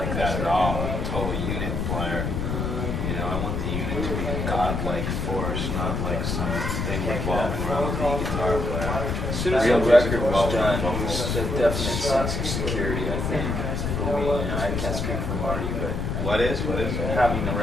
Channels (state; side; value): noise; left; rumble, 1 dB below the sound